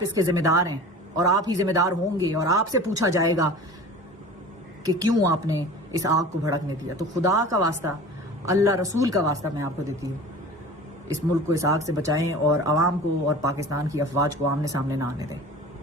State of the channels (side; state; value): both; normal; correlation 0.38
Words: اس کے ذمہ دار ہیں اور آپ ہی ذمہ دار ہوں گے، اور آپ سے پوچھا جائے گا کہ کیوں آپ نے اس آگ کو بھڑکنے دیا. تو خدا کا واسطہ، اللہ رسول کا واسطہ میں آپ کو دیتی ہوں، اس ملک کو اس آگ سے بچائیں اور عوام کو اور پاکستان کی افواج کو آمنے سامنے نہ آنے دیں.